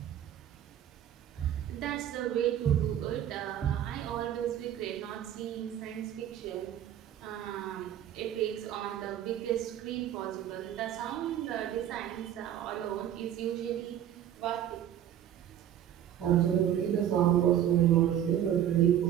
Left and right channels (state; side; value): quieter; left; 10.7 dB